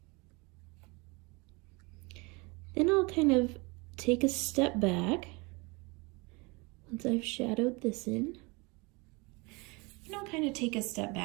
Then I'll kind of take a step back once I've shadowed this in. And I'll kind of take a step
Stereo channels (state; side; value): quieter; left; 27.6 dB